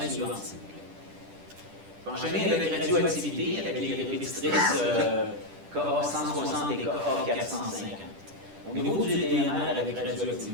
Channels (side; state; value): left; late; 10 ms